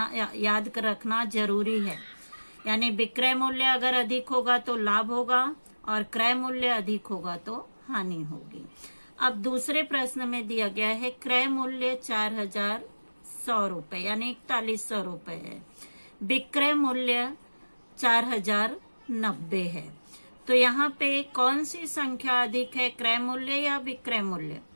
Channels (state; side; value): inverted; both; correlation -1.00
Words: याद रखना जरूरी है। यानी विक्रय मूल्य अगर अधिक होगा तो लाभ होगा, और क्रय मूल्य अधिक होगा तो हानि होगी। अब दूसरे प्रश्न में दिया गया है क्रय मूल्य 4100 रुपए यानी 4100 रुपए है, विक्रय मूल्य 4090 है। तो यहाँ पे कौन सी संख्या अधिक है, क्रय मूल्य या विक्रय मूल्य?